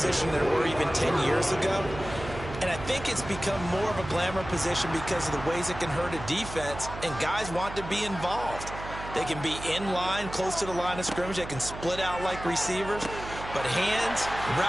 than there were even 10 years ago. And I think it's become more of a glamour position because of the ways it can hurt a defense, and guys want to be involved. They can be in line, close to the line of scrimmage. They can split out like receivers. But hands,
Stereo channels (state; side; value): noise; right; hum, 11 dB below the sound